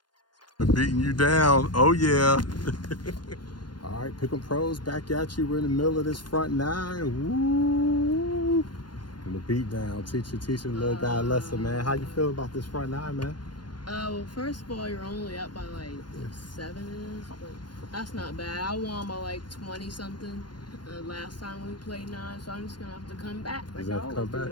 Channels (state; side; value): late; right; 0.71 ms